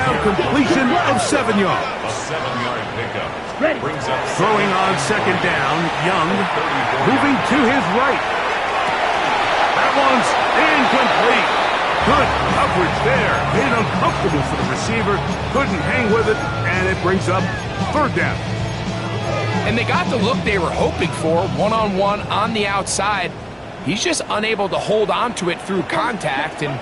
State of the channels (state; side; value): identical; both; correlation 1.00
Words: completion of 7 yards. A 7-yard pickup. Ready. Brings up Throwing on 2nd down, Young moving to his right. That one's incomplete. Good coverage there. Made it uncomfortable for the receiver. Couldn't hang with it, and it brings up 3rd down. And they got the look they were hoping for, one-on-one on the outside. He's just unable to hold on to it through contact, and